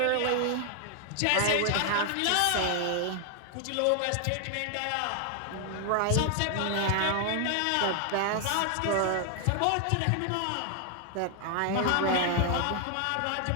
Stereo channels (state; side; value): different; both; correlation 0.00